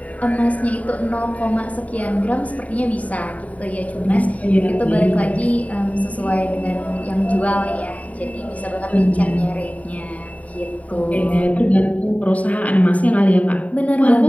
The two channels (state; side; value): late; right; 0.069 ms